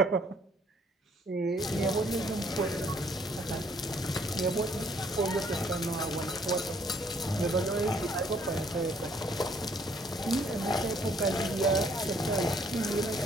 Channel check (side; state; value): both; normal; correlation 0.64